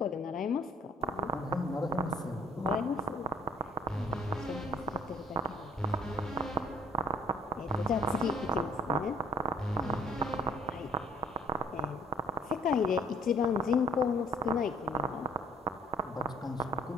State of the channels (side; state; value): both; normal; correlation 0.60